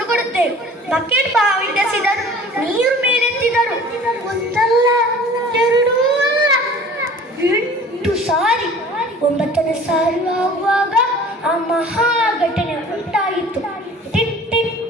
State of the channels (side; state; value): both; normal; correlation 0.46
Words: ಕೊಡುತ್ತೆ. ಬಕೆಟ್ ಬಾವಿಸಿದರು, ನೀರು ಮೇಲೆತ್ತಿದರು. ಒಂದಲ್ಲ 2 ಅಲ್ಲ 8 ಸಾರಿ. 9ನೇ ಸಾರಿ ಆಗುವಾಗ ಆ ಮಹಾ ಘಟನೆ ಉಂಟಾಗಿತ್ತು. ಟಿಟ್ ಟಿಟ್